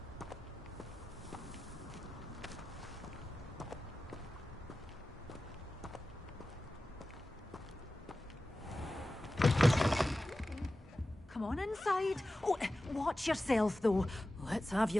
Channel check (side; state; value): both; normal; correlation 0.94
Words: Come on inside. Oh, watch yourself, though. Let's have